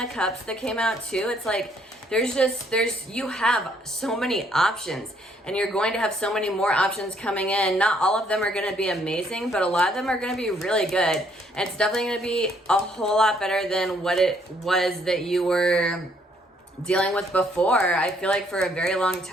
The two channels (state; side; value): normal; both; correlation 0.67